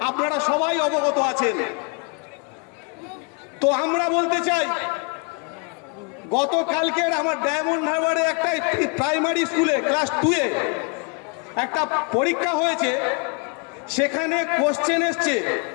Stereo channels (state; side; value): quieter; right; 34.6 dB